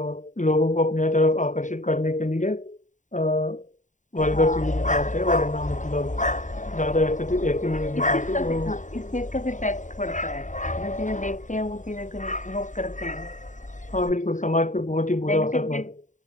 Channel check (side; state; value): right; late; 0.36 ms